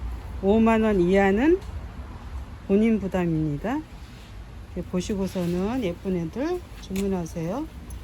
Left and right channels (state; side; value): identical; both; correlation 1.00